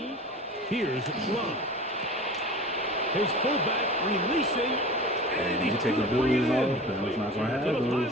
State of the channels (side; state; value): both; normal; correlation 0.36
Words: Here's Love. His fullback releasing, and he's take the blues off, and it's not going to have to the those.